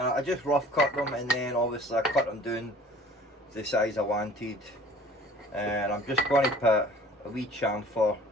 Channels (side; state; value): both; normal; correlation 0.49